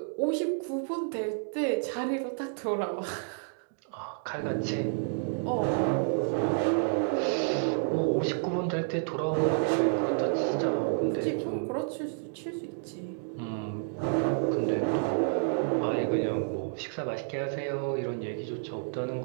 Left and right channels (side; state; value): left; silent; digital silence